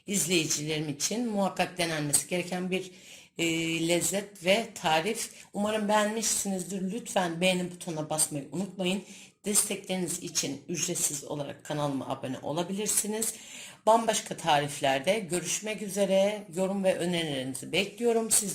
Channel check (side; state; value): both; identical; correlation 1.00